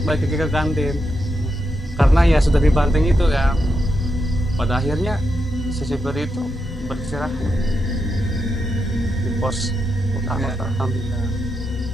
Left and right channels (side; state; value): both; normal; correlation 0.84